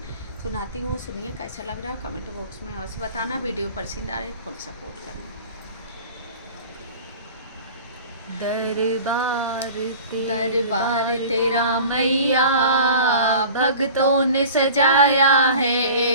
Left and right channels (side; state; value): both; inverted; correlation -0.41